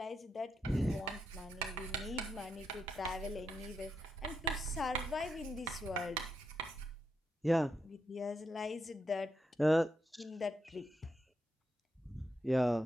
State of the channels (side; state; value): both; normal; correlation 0.83